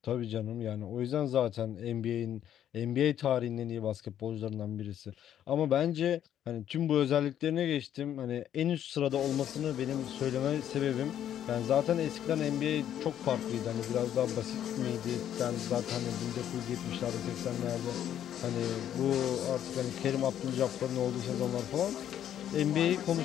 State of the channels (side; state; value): right; quieter; 10.5 dB